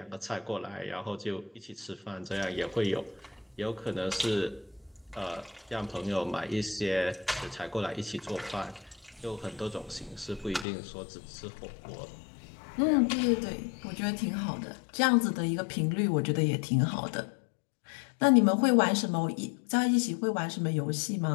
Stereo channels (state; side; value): drops out; right; at 10.7 s